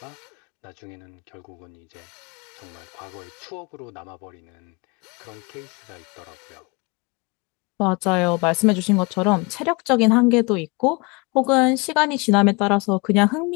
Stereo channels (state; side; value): quieter; right; 28.2 dB